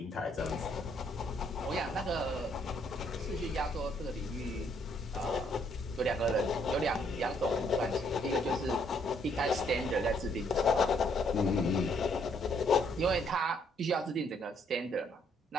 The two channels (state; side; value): normal; both; correlation 0.69